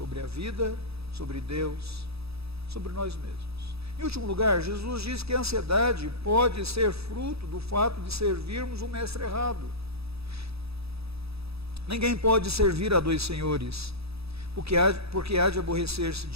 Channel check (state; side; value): late; left; 0.78 ms